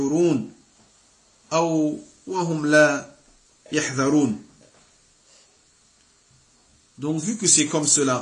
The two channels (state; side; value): identical; both; correlation 1.00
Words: أو وهم لا يحذرون. Donc vu que c'est comme